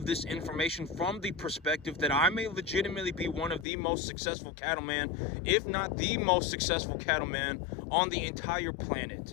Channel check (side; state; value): right; drops out; at 3.7 s